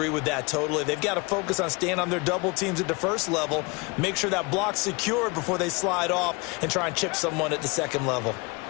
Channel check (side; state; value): right; quieter; 27.4 dB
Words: with that totally. They've got to focus on staying on their double teams at the first level, make sure that block's secured before they slide off and try and chip someone at the second level.